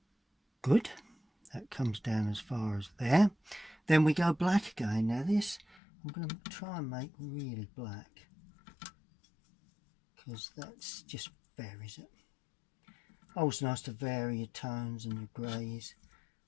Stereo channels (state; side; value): drops out; right; at 5.8 s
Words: Good, that comes down as far as there. Then we go black again. Now this I'm going to try and make really black, because that's just varies it. Always nice to vary your tones and your greys.